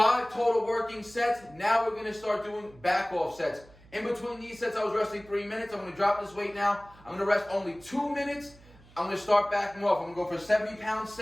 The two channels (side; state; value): right; noise; hum, 24 dB below the sound